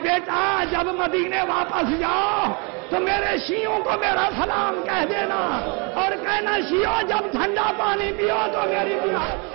بیٹا جب مدینے واپس جاؤ تو میرے شیعوں کو میرا سلام کہہ دینا، اور کہنا شیعوں جب ٹھنڈا پانی پیو تو میری پیا۔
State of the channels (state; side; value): quieter; left; 32.9 dB